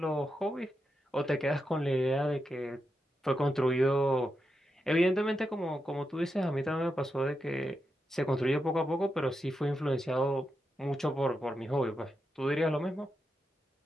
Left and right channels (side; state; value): both; normal; correlation 0.87